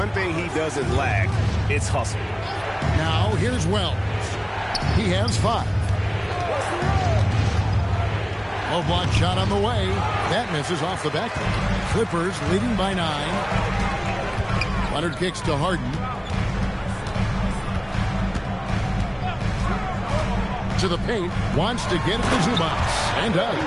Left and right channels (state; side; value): identical; both; correlation 1.00